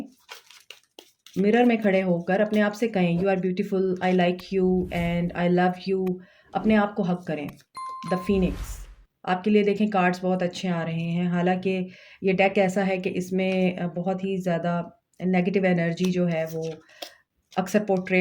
मिरर में खड़े होकर अपने आप से कहें, you are beautiful, I like you and I love you. अपने आप को हग करें। The phoenix. आपके लिए देखें कार्ड्स बहुत अच्छे आ रहे हैं। हालाँकि ये डेक ऐसा है कि इसमें बहुत ही ज़्यादा नेगेटिव एनर्जी जो है वो अक्सर पोर्ट्रे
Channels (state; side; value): identical; both; correlation 1.00